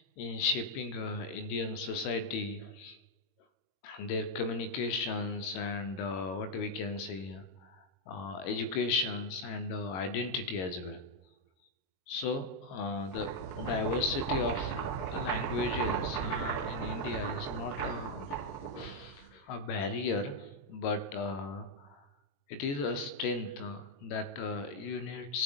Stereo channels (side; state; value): right; late; 22 ms